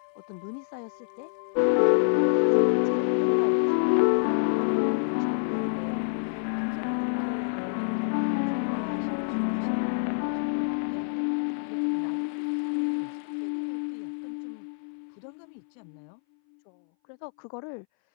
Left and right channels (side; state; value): right; silent; 60 dB below the other